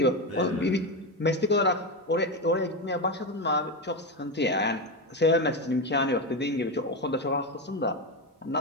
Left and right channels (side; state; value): both; normal; correlation 0.14